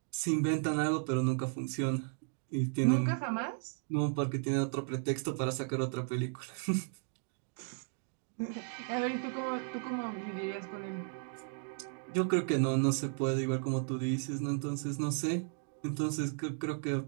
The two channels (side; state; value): left; silent; 55 dB below the other